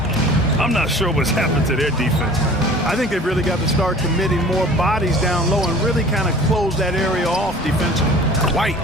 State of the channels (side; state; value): both; normal; correlation 0.45